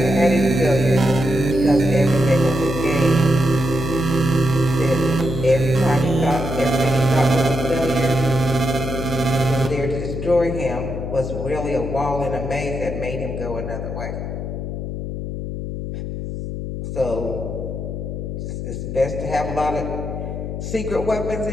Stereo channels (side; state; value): left; noise; hum, 5 dB below the sound